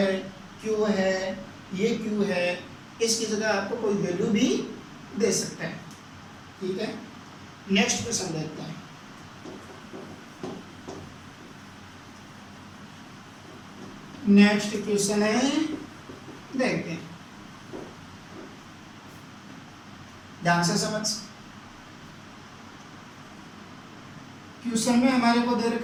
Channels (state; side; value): identical; both; correlation 1.00